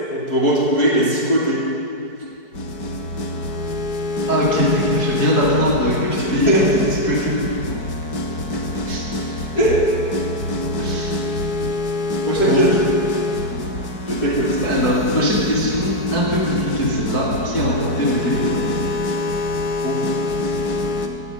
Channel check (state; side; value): late; right; 4.6 ms